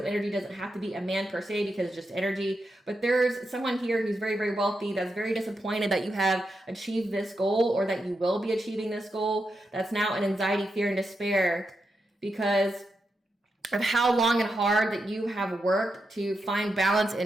energy. Doesn't have to be a man per se because it's just energy, but there's someone here who's very, very wealthy that's very disappointed that you have achieved this goal or that you will be achieving this goal. That's now in anxiety, fear, and despair because of how long and hard that you have worked to find balance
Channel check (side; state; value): both; normal; correlation 0.86